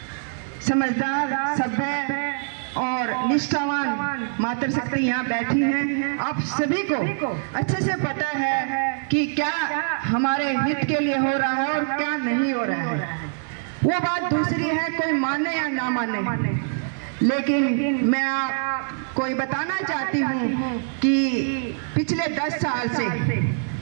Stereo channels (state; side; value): silent; left; digital silence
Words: समझदार, सभ्य और निष्ठावान मातृशक्ति यहाँ बैठी हैं। आप सभी को अच्छे से पता है कि क्या हमारे हित के लिए हो रहा है और क्या नहीं हो रहा है। वो बात दूसरी है, कोई माने या ना माने, लेकिन मैं आपको ये बताना चाहती हूँ कि पिछले 10 साल से